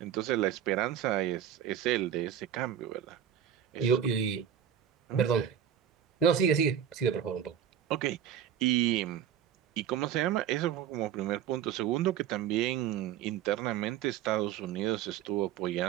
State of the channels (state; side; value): quieter; left; 9.4 dB